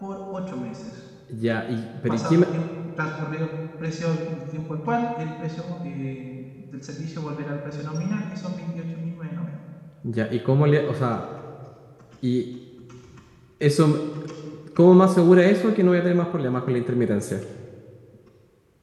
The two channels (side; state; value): both; identical; correlation 1.00